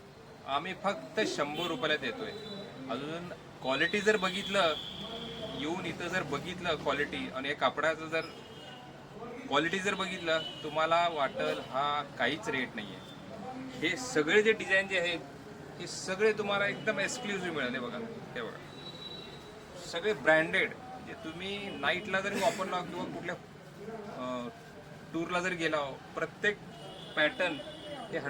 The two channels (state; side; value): identical; both; correlation 1.00